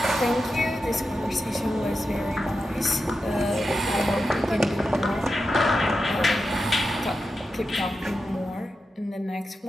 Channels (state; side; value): normal; both; correlation 0.90